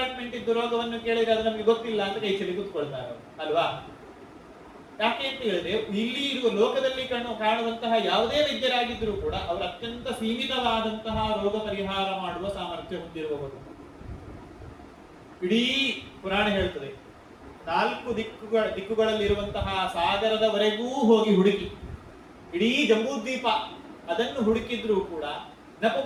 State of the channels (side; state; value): both; identical; correlation 1.00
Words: ಇದ್ದು ರೋಗವನ್ನು ಕೇಳಿದ್ರೆ ಅದು ನಮಗೆ ಗೊತ್ತಿಲ್ಲ ಅಂತ ಕೈ ಚೆಲ್ಲಿ ಕೂತ್ಕೊಳ್ತಾರೆ ಅಲ್ವಾ. ಯಾಕೆ ಅಂತ ಹೇಳಿದ್ರೆ ಇಲ್ಲಿ ಇರುವ ಲೋಕದಲ್ಲಿ ಕಾಣುವಂತಹ ಯಾವುದೇ ವೈದ್ಯರಾಗಿದ್ದರೂ ಕೂಡ ಅವರು ಅತ್ಯಂತ ಸೀಮಿತವಾದಂತಹ ರೋಗ ಪರಿಹಾರ ಮಾಡುವ ಸಾಮರ್ಥ್ಯ ಹೊಂದಿರುವವರು. ಇಡೀ ಪುರಾಣ ಹೇಳ್ತದೆ, 4 ದಿಕ್ಕುಗಳಲ್ಲಿರುವಂತಹ ಸಾಗರದವರೆಗೂ ಹೋಗಿ ಹುಡುಕಿ ಇಡೀ ಜಂಬೂದ್ವೀಪ ಅದನ್ನು ಹುಡುಕಿದ್ರೂ ಕೂಡ